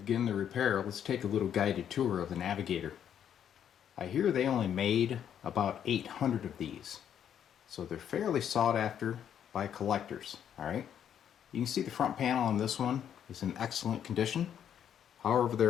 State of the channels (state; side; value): quieter; right; 9.2 dB